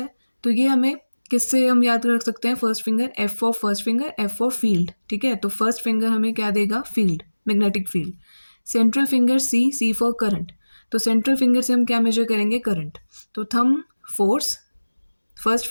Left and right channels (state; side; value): inverted; both; correlation -1.00